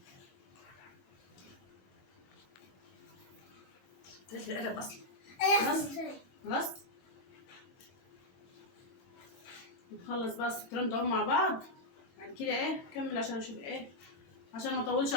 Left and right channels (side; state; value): right; late; 23 ms